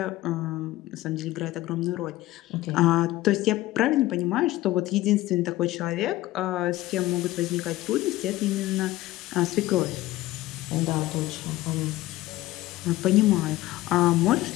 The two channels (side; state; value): right; quieter; 16.8 dB